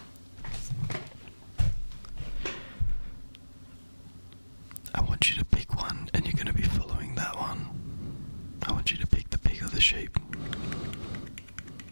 I want you to pick one, and you're gonna be following that one. I want you to pick the pig or the sheep.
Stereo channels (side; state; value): both; inverted; correlation -1.00